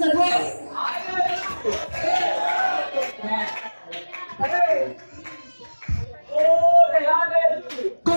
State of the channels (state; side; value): inverted; both; correlation -1.00